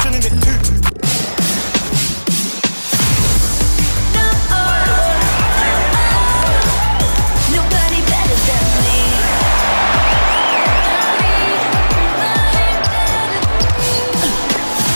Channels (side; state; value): both; inverted; correlation -1.00